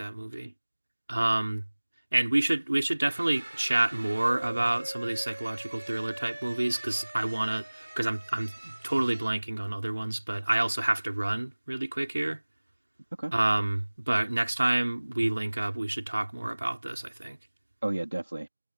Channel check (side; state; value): both; inverted; correlation -1.00